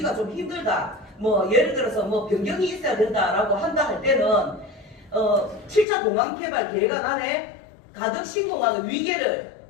좀 힘들다, 예를 들어서 변경이 있어야 된다라고 한다 할 때는 7차 공항 개발 계획안 안에 가덕신공항의 위계를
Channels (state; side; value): drops out; right; at 5.9 s